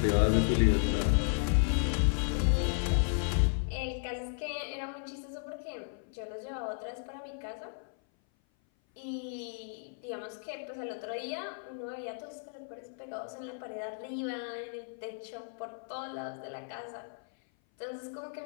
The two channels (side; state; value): right; silent; 55 dB below the other